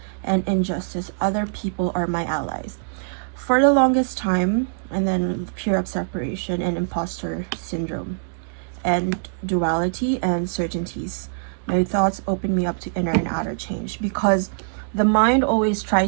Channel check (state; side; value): silent; left; digital silence